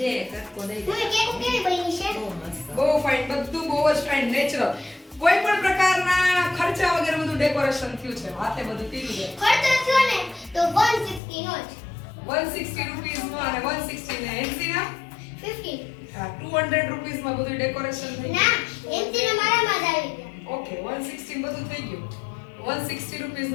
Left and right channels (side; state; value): right; drops out; at 11.2 s